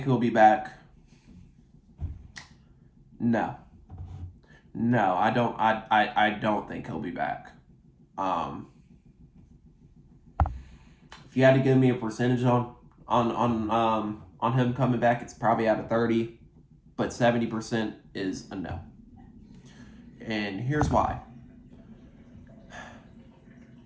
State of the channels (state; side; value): identical; both; correlation 1.00